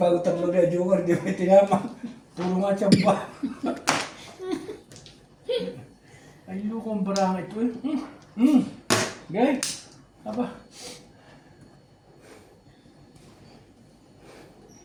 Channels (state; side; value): identical; both; correlation 1.00